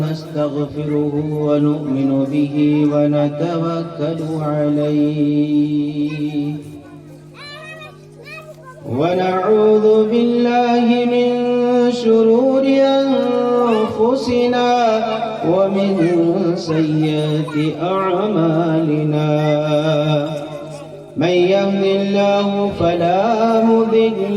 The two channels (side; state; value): both; identical; correlation 1.00